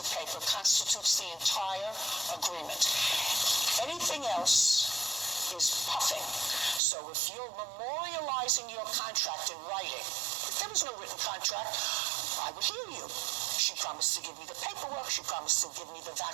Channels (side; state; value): left; drops out; at 6.8 s